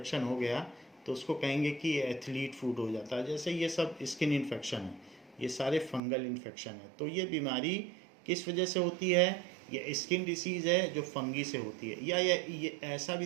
हो गया तो उसको कहेंगे कि ये एथलीट फूड हो जाता है। जैसे ये सब स्किन इन्फेक्शन है, ये सारे फंगल इन्फेक्शन है। तो ये बीमारी किस वजह से होती है? ये स्किन डिसीज़ है जो फंगी से होती है। या ये ऐसा भी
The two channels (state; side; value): drops out; left; at 6.0 s